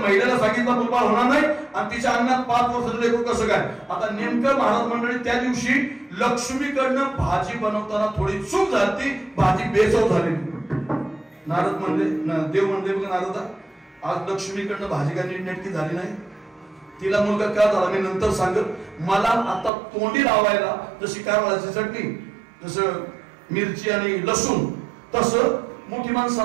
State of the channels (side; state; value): left; drops out; at 19.7 s